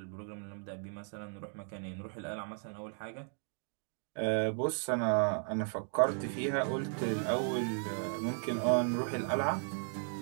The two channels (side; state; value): left; silent; 54 dB below the other